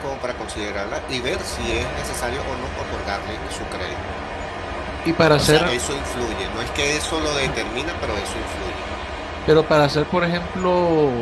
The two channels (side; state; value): both; identical; correlation 1.00